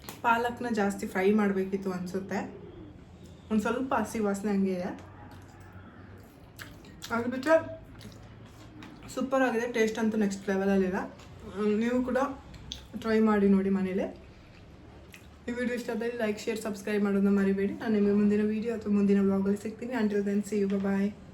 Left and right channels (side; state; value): both; identical; correlation 1.00